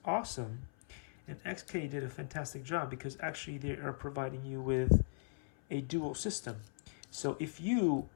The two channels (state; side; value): silent; right; 52 dB below the other